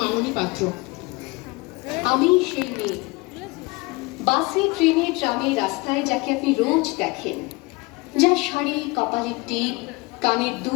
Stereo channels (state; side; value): quieter; right; 25.0 dB